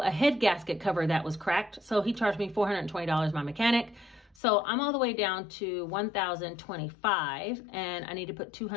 head gasket cover that was cracked. So he charged me $420, my mechanic. So I'm all the way down to $1,025, and I need to put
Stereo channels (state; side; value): drops out; right; at 4.4 s